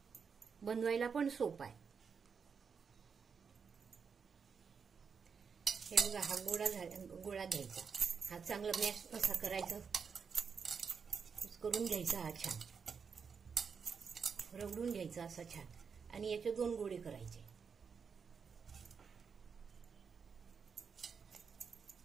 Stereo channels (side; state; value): left; quieter; 6.0 dB